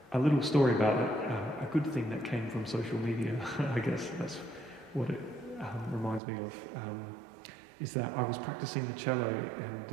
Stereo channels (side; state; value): left; drops out; at 6.2 s